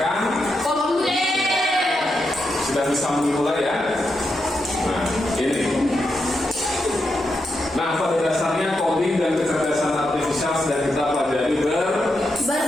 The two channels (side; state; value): both; normal; correlation 0.85